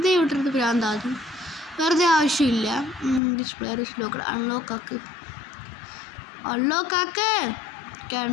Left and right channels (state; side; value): drops out; right; at 3.2 s